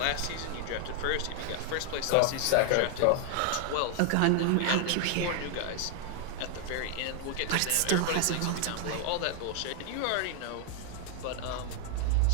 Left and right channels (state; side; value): different; both; correlation 0.00